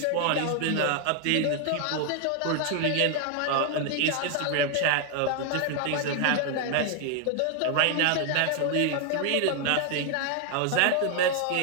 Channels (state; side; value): different; both; correlation 0.00